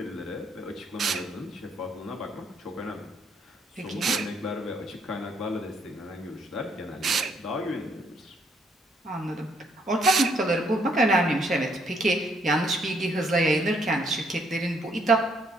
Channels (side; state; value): both; normal; correlation 0.69